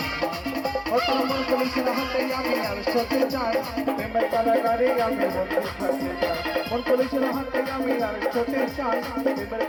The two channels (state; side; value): identical; both; correlation 1.00